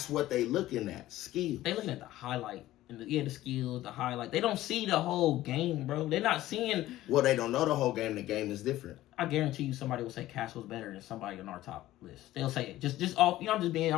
what they looking at. Skills. They looking at the highlight. And the skills, the highlight. They don't see the whole game, bro. They're not seeing. Well, they don't know the whole game. The game is different. I guarantee you, somebody will say Castle's better than somebody on our top list. They'll say it. Just off. You know,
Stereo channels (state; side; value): quieter; right; 15.3 dB